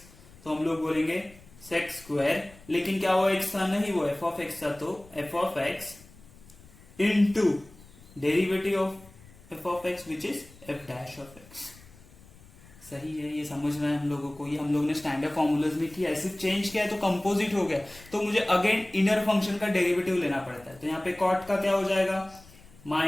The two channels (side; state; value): left; noise; rumble, 23 dB below the sound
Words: तो हम लोग बोलेंगे sec², लेकिन क्या वो x था, नहीं वो f(x) था, तो f(x) into derivative of f(x) which is f'(x). सही है, ये समझ में है हम लोगों को? ये हम लोग ने स्टैंडर्ड फॉर्मूलाज में किया है, सिर्फ चेंज किया है तो कंपोजिट हो गया, तो मुझे अगेन इनर फंक्शन का डेरिवेटिव लेना पड़ता है। तो यहाँ पे कॉट का क्या हो जाएगा,